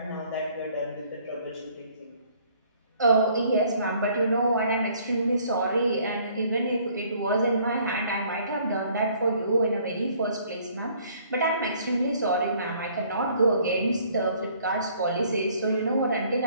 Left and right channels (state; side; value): inverted; both; correlation -0.60